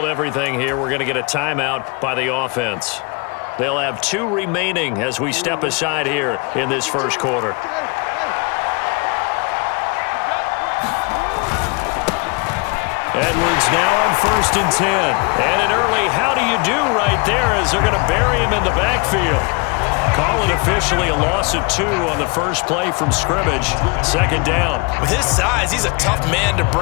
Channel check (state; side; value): quieter; right; 30.5 dB